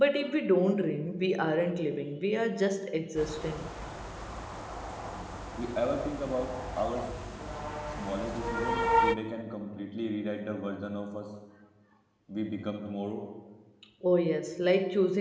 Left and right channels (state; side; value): identical; both; correlation 1.00